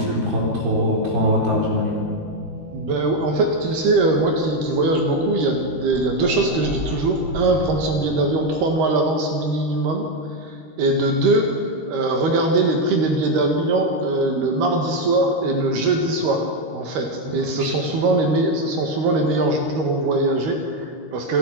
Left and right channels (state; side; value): late; left; 13 ms